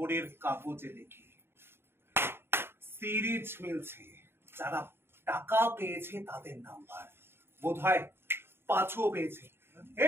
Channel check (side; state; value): left; late; 0.11 ms